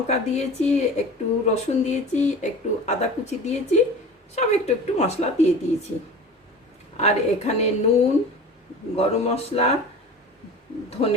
দিয়েছি, একটু রসুন দিয়েছি, একটু আদা কুচি দিয়েছি, সব একটু একটু মশলা দিয়ে দিয়েছি। আর এখানে নুন, গরম মশলা,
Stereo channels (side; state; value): both; normal; correlation 0.37